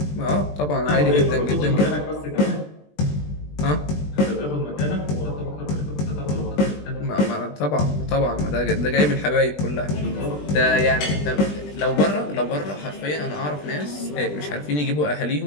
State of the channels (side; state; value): right; late; 20 ms